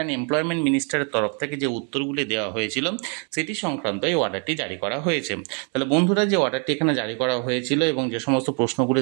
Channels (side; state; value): left; quieter; 38.4 dB